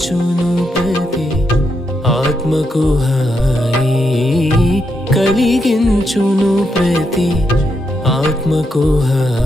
ప్రతి ఆత్మకు హాయి కలిగించును ప్రతి ఆత్మకు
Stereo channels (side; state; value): both; normal; correlation 0.82